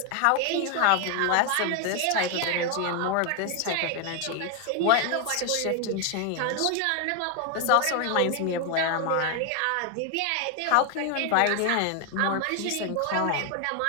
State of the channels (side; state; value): both; different; correlation 0.01